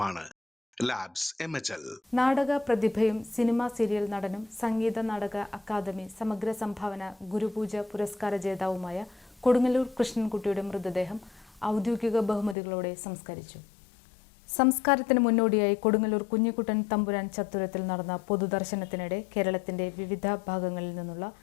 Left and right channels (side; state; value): right; drops out; at 12.6 s